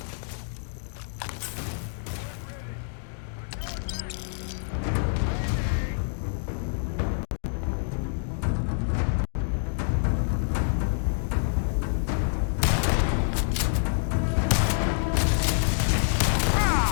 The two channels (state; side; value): silent; right; digital silence